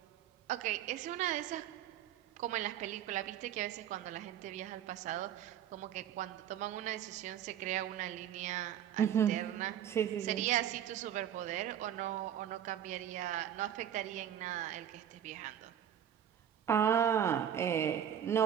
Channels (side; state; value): left; quieter; 9.9 dB